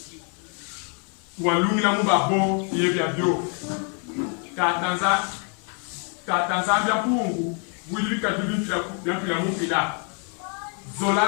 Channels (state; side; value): quieter; right; 39.8 dB